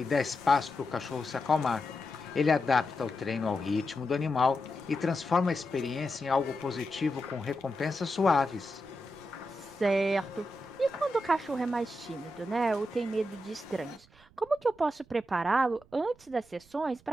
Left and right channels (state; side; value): noise; right; rumble, 27 dB below the sound